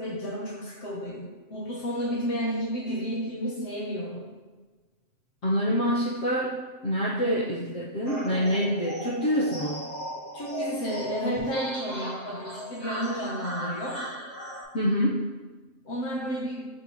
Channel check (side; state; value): right; late; 7.6 ms